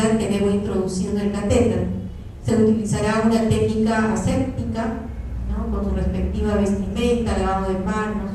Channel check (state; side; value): identical; both; correlation 1.00